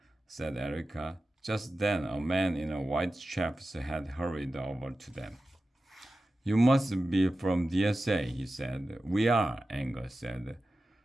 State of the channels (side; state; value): both; normal; correlation 0.94